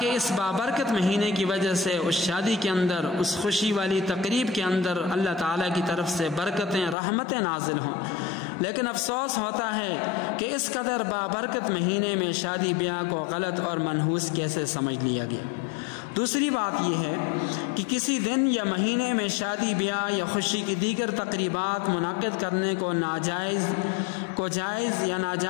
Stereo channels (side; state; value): right; drops out; at 7.0 s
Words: اس بابرکت مہینے کی وجہ سے اس شادی کے اندر، اس خوشی والی تقریب کے اندر اللہ تعالیٰ کی طرف سے برکتیں، رحمتیں نازل ہوں۔ لیکن افسوس ہوتا ہے کہ اس قدر بابرکت مہینے میں شادی بیاہ کو غلط اور منحوس کیسے سمجھ لیا گیا۔ دوسری بات یہ ہے کہ کسی دن یا مہینے میں شادی بیاہ یا خوشی کی دیگر تقریبات منعقد کرنے کو جائز یا